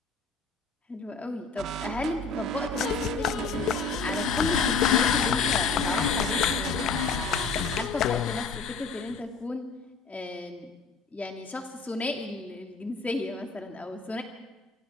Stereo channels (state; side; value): quieter; right; 4.6 dB